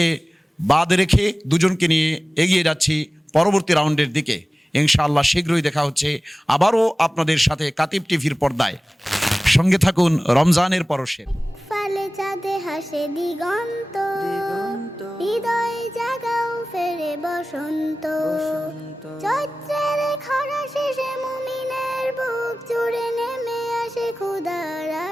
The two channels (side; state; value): both; normal; correlation 0.97